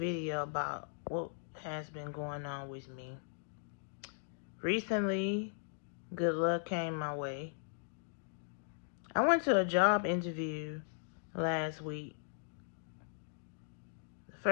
about what has been going on with me. Recently, good luck came my way. I went to a job interview last week. The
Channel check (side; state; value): right; silent; digital silence